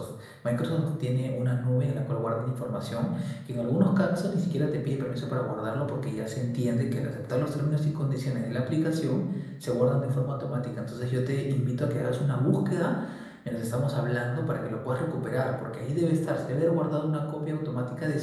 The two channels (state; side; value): identical; both; correlation 1.00